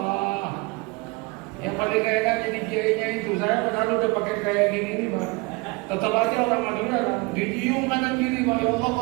Yang paling enak jadi kiainya itu. Saya padahal udah pakai kayak gini nih Pak. Tetap aja orang Madura kan dicium kanan kiri Pak. Ya Allah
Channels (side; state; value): left; quieter; 27.1 dB